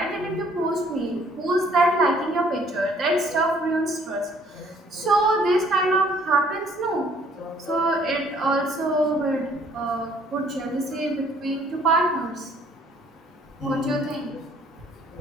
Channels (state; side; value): normal; both; correlation 0.60